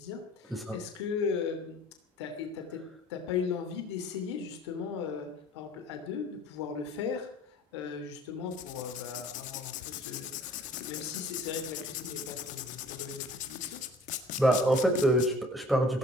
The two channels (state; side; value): normal; both; correlation 0.50